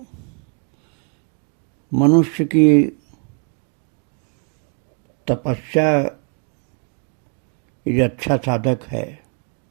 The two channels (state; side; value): quieter; left; 39.2 dB